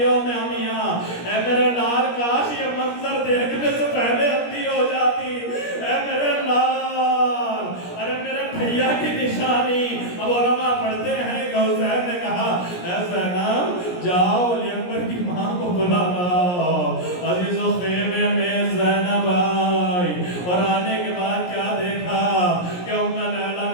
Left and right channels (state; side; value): late; right; 17 ms